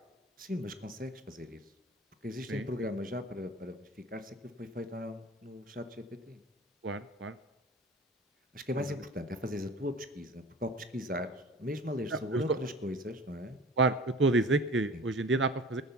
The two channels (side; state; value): both; normal; correlation 0.40